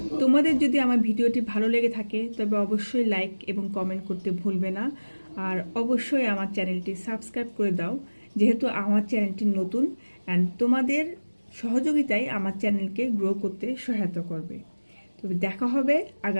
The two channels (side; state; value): both; inverted; correlation -1.00